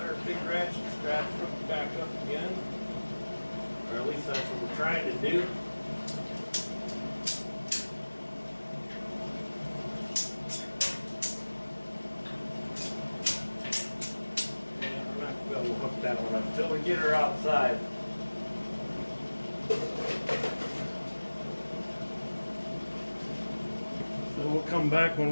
Big ratchet strap hooked back up again, or at least that's what we're trying to do. And we're not going to be able to hook that one up until we get her outside. So we'll come back when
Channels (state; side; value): inverted; both; correlation -1.00